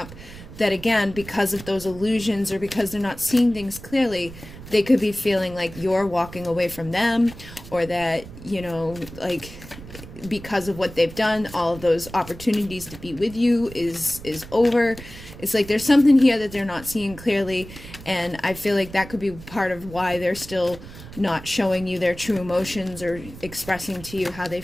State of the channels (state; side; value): noise; right; rumble, 15 dB below the sound